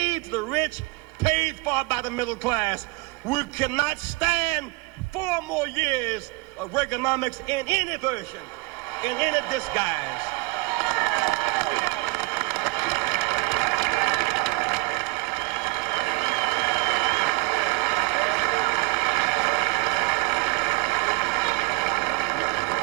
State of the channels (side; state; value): left; quieter; 24.0 dB